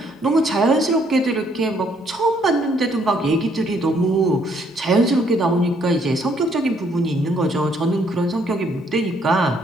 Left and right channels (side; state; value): both; normal; correlation 0.68